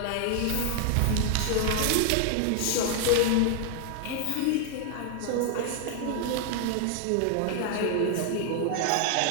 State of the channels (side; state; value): both; different; correlation 0.00